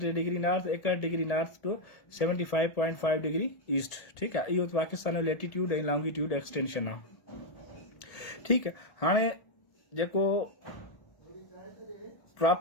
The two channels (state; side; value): late; right; 1.8 ms